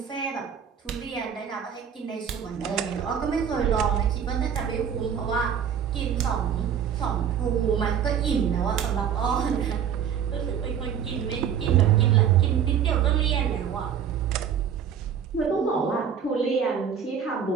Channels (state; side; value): quieter; left; 8.2 dB